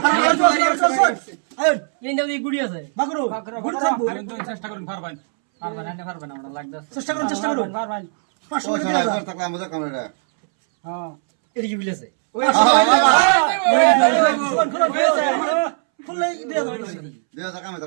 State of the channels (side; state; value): left; silent; 66 dB below the other